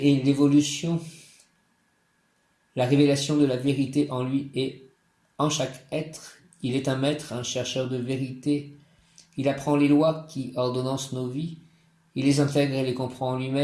l'évolution, la révélation de la vérité en lui et en chaque être. Il est un maître, un chercheur de vérité. Il apprend les lois qui ordonnancent nos vies. Il les intègre et les comprend en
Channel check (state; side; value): identical; both; correlation 1.00